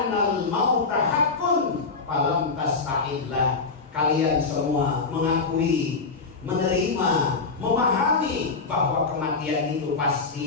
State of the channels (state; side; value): quieter; right; 4.3 dB